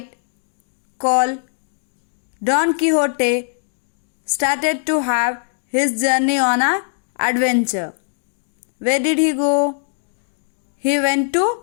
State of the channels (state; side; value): silent; right; digital silence